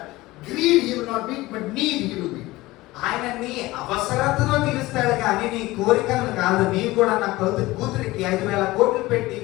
greed he will not meet, but need he will meet. ఆయన నీ అవసరతను తీరుస్తాడు కానీ నీ కోరికలను కాదు. నీవు కూడా నా కూతురికి 5,000 కోట్లు పెట్టి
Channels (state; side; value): quieter; right; 19.1 dB